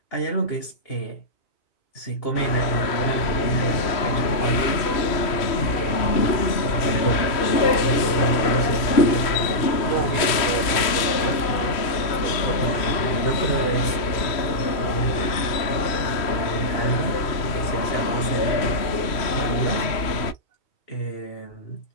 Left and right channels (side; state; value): right; late; 3.0 ms